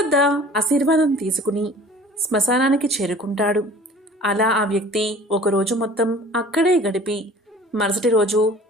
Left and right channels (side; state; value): both; normal; correlation 0.47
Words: ఆశీర్వాదం తీసుకుని శ్మశానానికి చేరుకుంటాడు. అలా ఆ వ్యక్తి ఒకరోజు మొత్తం అక్కడే గడిపి మరుసటి రోజు